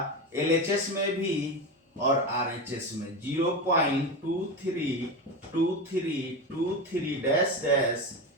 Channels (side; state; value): both; normal; correlation 0.20